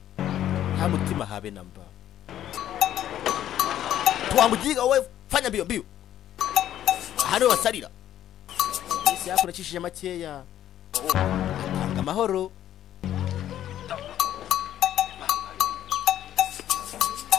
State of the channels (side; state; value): right; quieter; 11.6 dB